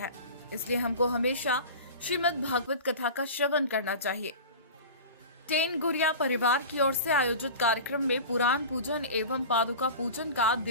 इसलिए हमको हमेशा श्रीमद् भागवत कथा का श्रवण करना चाहिए। टेन गुरिया परिवार की ओर से आयोजित कार्यक्रम में पुराण पूजन एवं पादुका पूजन का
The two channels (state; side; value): inverted; both; correlation -0.34